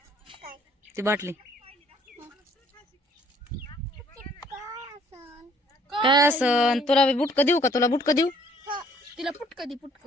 ती बाटली. काय असन तुला बुटक देऊ का? तुला बुटक देऊ? तिला पुटक दे पुटक.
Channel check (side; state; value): both; normal; correlation 0.60